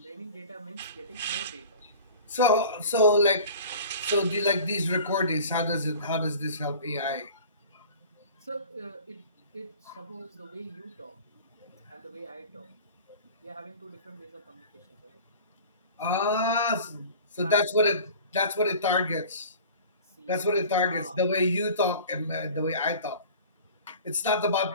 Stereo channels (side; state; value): both; inverted; correlation -0.42